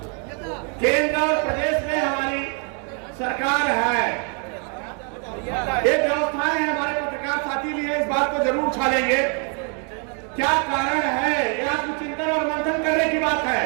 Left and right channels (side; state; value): left; quieter; 39.6 dB